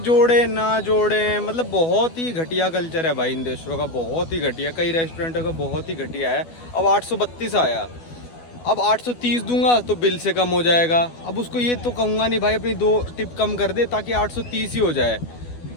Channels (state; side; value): late; right; 12 ms